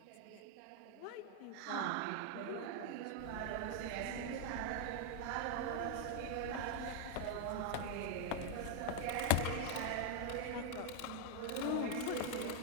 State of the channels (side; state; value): both; different; correlation 0.00